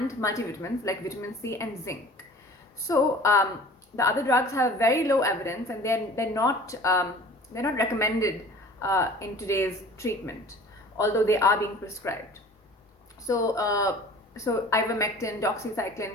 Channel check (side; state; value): both; normal; correlation 0.45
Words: multivitamins like vitamin C and zinc. So the other drugs have very low evidence, and they're not recommended in today's treatment, although they are being prescribed. So ivermectin,